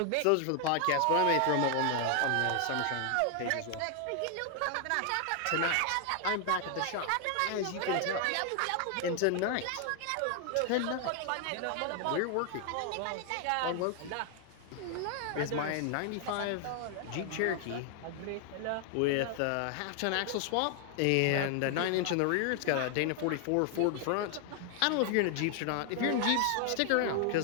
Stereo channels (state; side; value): different; both; correlation 0.00